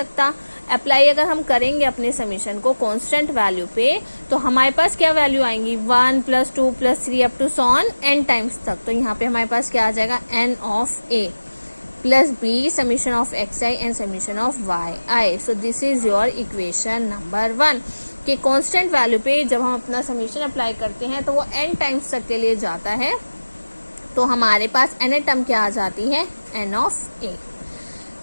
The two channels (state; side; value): inverted; both; correlation -1.00